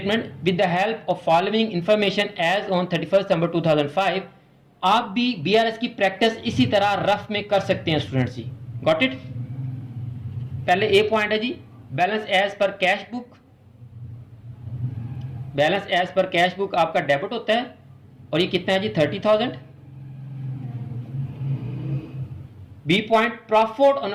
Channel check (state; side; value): identical; both; correlation 1.00